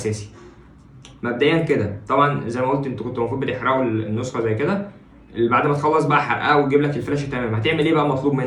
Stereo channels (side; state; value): both; identical; correlation 1.00